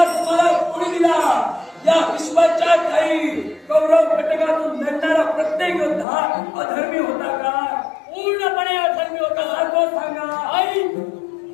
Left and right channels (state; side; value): drops out; right; at 6.1 s